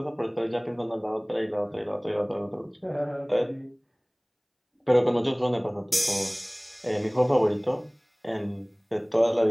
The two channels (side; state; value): both; identical; correlation 1.00